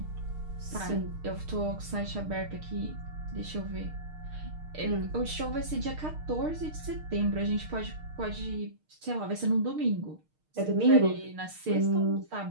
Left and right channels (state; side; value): late; left; 6.5 ms